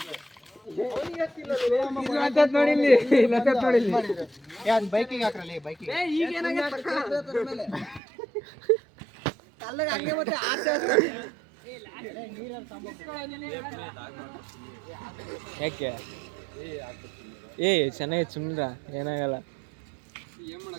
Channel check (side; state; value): left; drops out; at 8.0 s